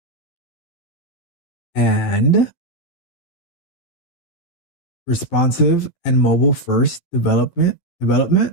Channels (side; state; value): right; late; 12 ms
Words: and responsive and mobile first development,